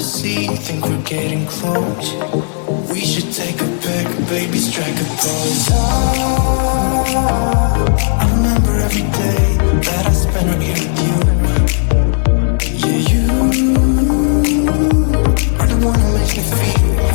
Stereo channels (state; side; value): silent; right; digital silence